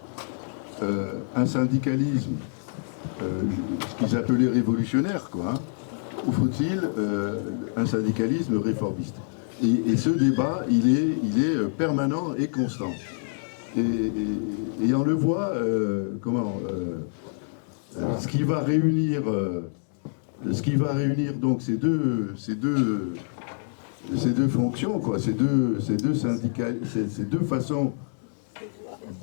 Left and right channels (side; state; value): right; silent; digital silence